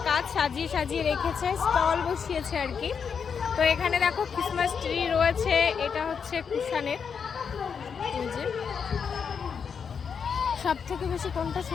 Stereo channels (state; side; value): quieter; right; 6.5 dB